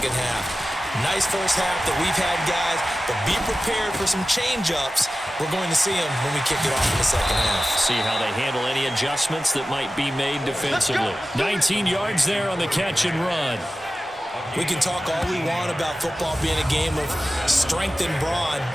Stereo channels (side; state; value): both; normal; correlation 0.95